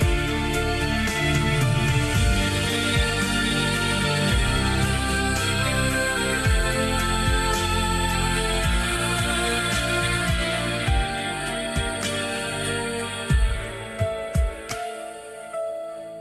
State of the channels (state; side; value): identical; both; correlation 1.00